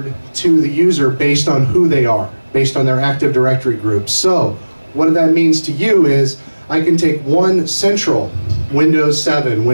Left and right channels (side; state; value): both; inverted; correlation -1.00